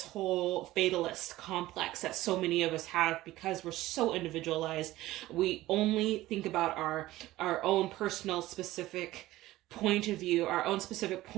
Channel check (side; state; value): left; quieter; 16.7 dB